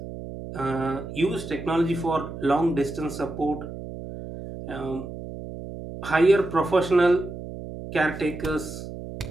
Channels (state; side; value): noise; right; hum, 10 dB below the sound